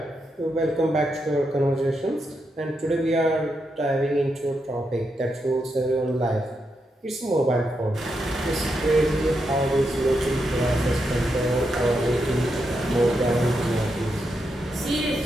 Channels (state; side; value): normal; both; correlation 0.83